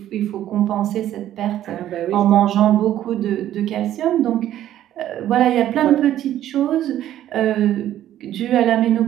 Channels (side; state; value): left; quieter; 12.2 dB